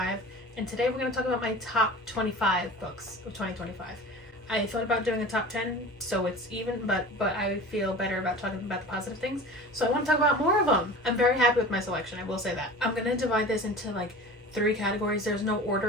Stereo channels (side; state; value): both; normal; correlation 0.38